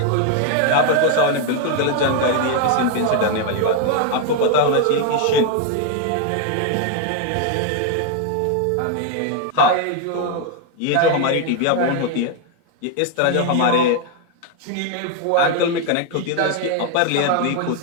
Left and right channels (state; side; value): different; both; correlation 0.01